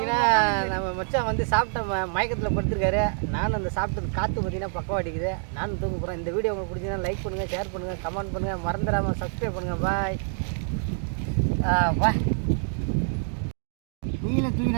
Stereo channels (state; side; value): silent; left; 61 dB below the other